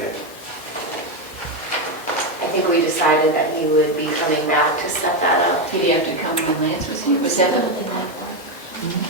I think we decided that he would be coming back to set that up. Did he have to come when Lance was here? Was that a?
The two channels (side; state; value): both; normal; correlation 0.09